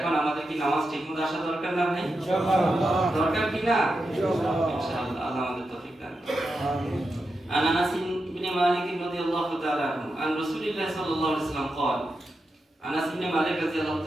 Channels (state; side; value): normal; both; correlation 0.88